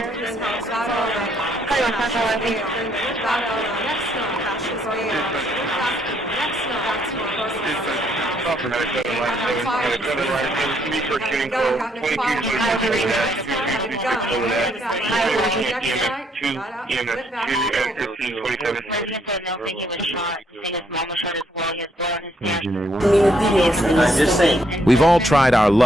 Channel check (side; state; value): both; normal; correlation 0.70